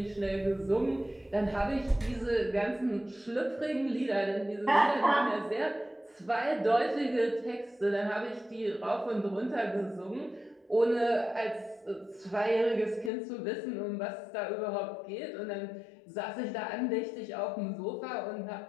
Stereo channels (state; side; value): drops out; right; at 13.1 s